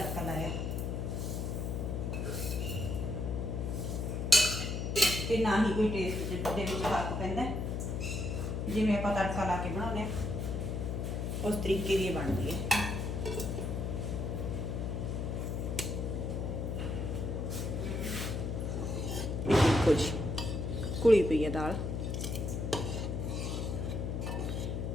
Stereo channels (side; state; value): left; noise; hum, 2 dB below the sound